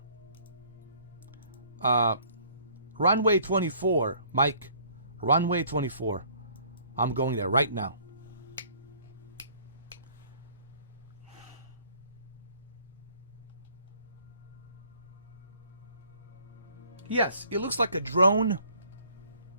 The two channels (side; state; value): both; inverted; correlation -0.58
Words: Runway 24, Mike. Runway 24. I'm going there right now. Yes, it looks like a drone.